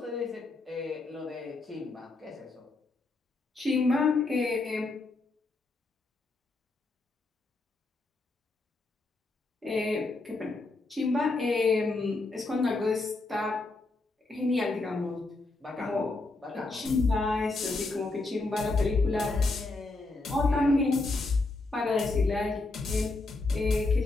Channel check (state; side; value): quieter; right; 3.3 dB